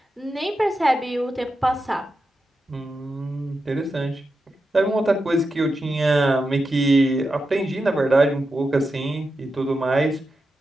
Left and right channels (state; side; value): normal; both; correlation 0.89